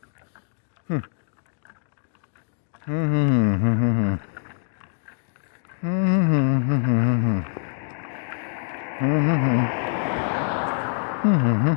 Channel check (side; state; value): right; silent; digital silence